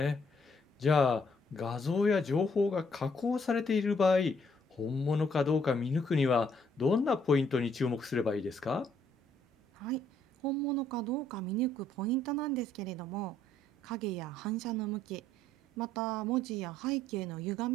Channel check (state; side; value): normal; both; correlation 0.67